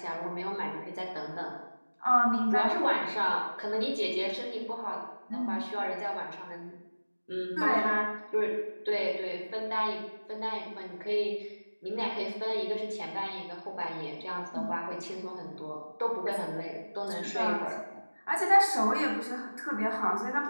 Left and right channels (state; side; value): inverted; both; correlation -1.00